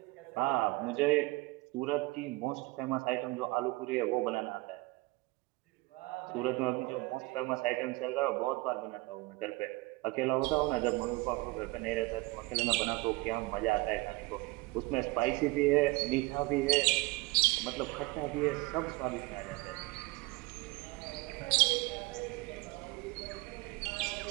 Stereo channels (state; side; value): quieter; left; 21.9 dB